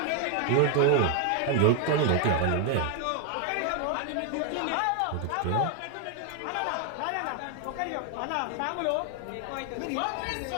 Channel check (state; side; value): different; both; correlation 0.00